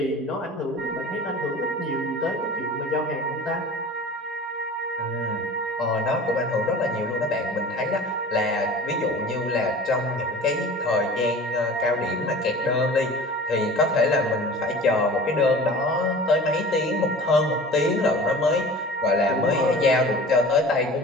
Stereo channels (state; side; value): normal; both; correlation 0.40